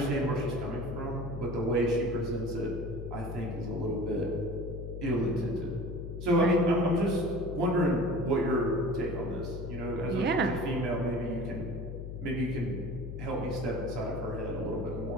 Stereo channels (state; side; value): noise; left; hum, 7 dB below the sound